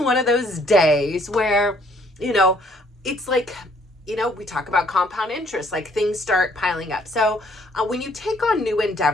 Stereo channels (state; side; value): normal; both; correlation 0.63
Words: one of those days where, it's like, we talk about compound interest, like things start piling up. So when you take on new